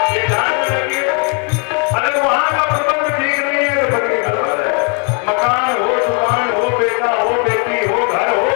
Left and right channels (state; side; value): quieter; right; 37.2 dB